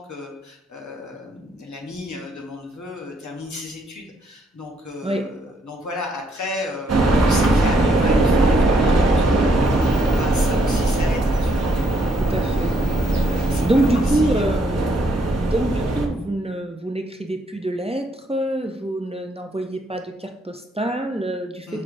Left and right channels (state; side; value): normal; both; correlation 0.72